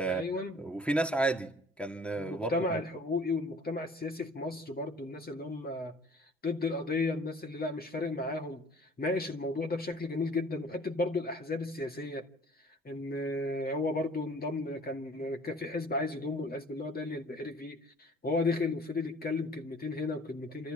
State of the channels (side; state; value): both; normal; correlation 0.52